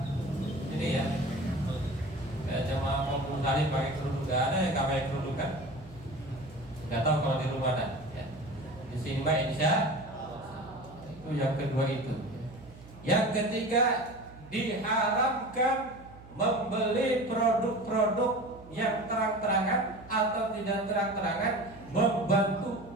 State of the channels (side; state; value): right; noise; hum, 20 dB below the sound